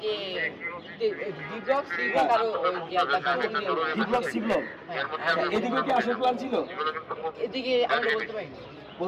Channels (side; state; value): both; identical; correlation 1.00